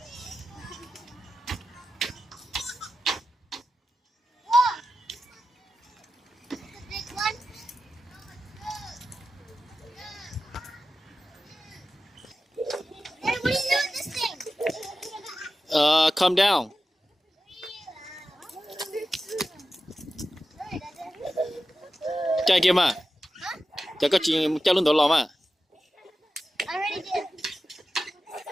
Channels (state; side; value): normal; both; correlation 0.92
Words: Calm down. Chạy kia mà. Chạy có chuyện chạy luôn đó lò mà. I already did.